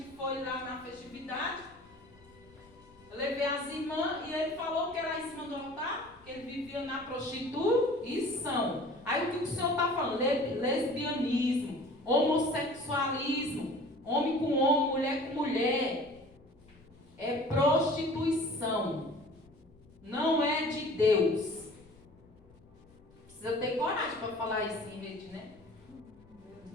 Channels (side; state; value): left; noise; rumble, 26 dB below the sound